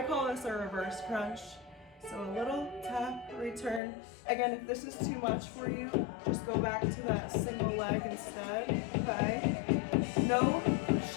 call this a reverse crunch. So a little tap, return. Again, if this is too much for you, just go back to that single leg instead, okay? No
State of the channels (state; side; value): drops out; right; at 3.8 s